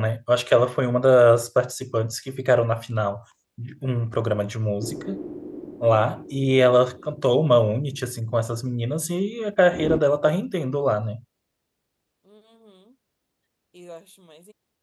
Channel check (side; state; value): both; identical; correlation 1.00